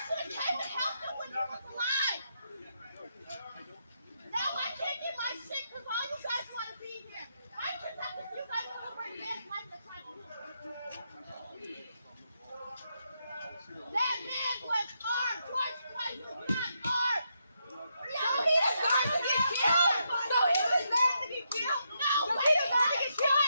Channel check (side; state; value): both; inverted; correlation -0.80